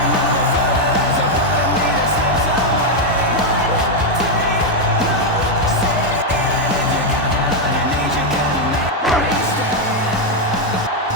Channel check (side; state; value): both; normal; correlation 0.02